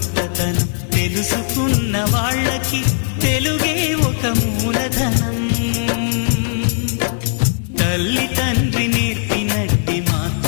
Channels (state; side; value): silent; right; digital silence